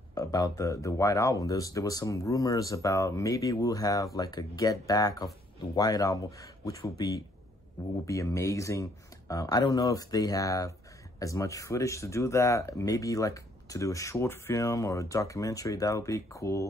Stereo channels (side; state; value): both; normal; correlation 0.66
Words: the White Album. There was some rumors about maybe we'll have like a get back of the White Album, which will be amazing. I don't know if they have as much footage to do that. Maybe like to do a short film or a documentary, that would be